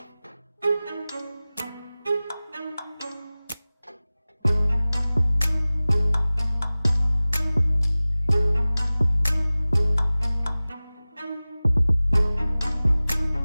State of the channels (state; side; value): inverted; both; correlation -0.98